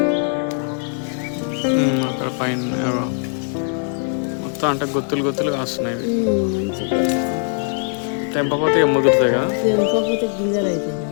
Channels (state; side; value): silent; right; 57 dB below the other